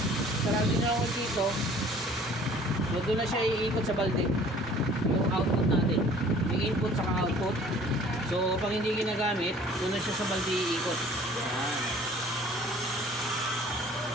sarado nyo ako dito. So, doon na siya iikot sa balde. Yung output natin. Yung input saka output. So, pag hindi ginagamit, doon na siya sa balde iikot. Yan.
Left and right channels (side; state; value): both; normal; correlation 0.51